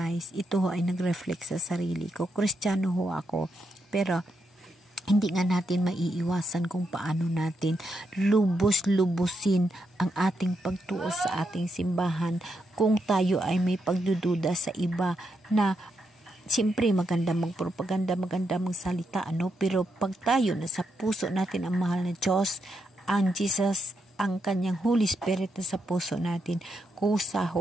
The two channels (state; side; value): normal; both; correlation 0.82